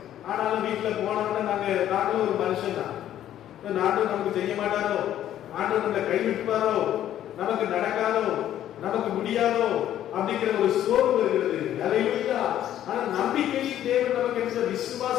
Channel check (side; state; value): right; quieter; 11.6 dB